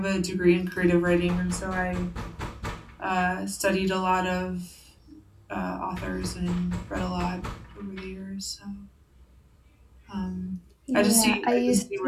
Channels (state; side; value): identical; both; correlation 1.00